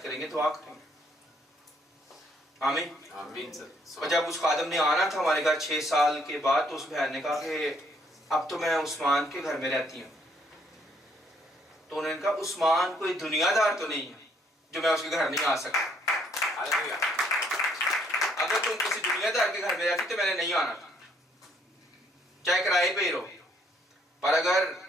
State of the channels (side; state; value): both; normal; correlation 0.68